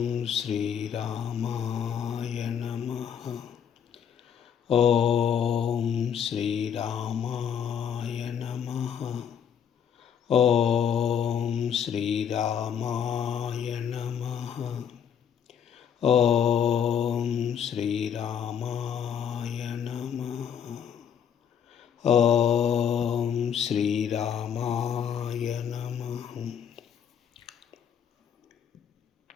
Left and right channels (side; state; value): right; quieter; 8.2 dB